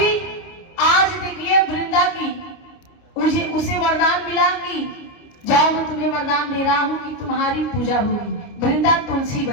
आज देखिए वृंदा की उसे वरदान मिला कि जाओ मैं तुम्हें वरदान दे रहा हूँ कि तुम्हारी पूजा होगी। वृंदा तुलसी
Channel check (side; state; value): right; late; 29 ms